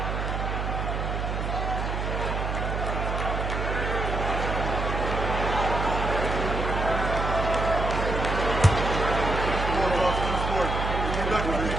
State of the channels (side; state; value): right; noise; hum, 2 dB below the sound